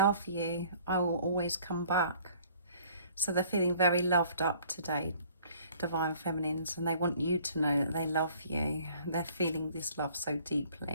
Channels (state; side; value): inverted; both; correlation -0.56